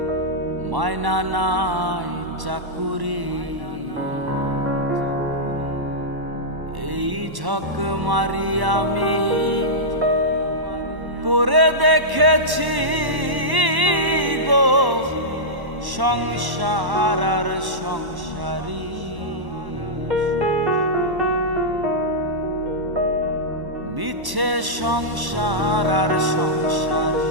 মায়না নাই চাকুরি। এই ঝক মারি আমি করে দেখেছি গো সংসার আর সংসারী। মিছে সংসার আর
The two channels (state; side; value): late; left; 1.1 ms